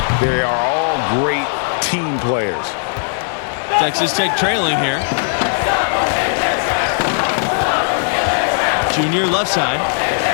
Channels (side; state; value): right; silent; digital silence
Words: They are all great team players. Texas Tech trailing here. Junior left side.